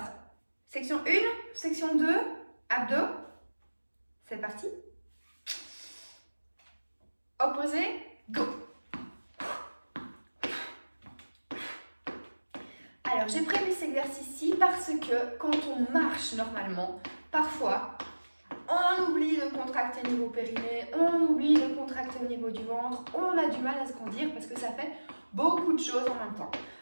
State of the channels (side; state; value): both; inverted; correlation -1.00